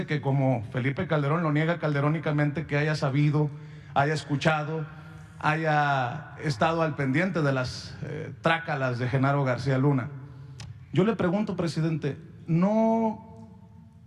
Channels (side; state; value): both; identical; correlation 1.00